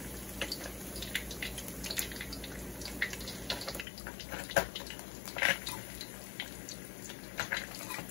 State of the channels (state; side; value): drops out; right; at 3.9 s